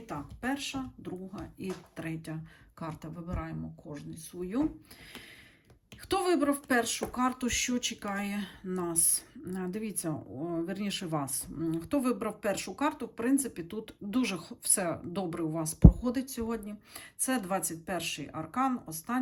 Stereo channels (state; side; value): identical; both; correlation 1.00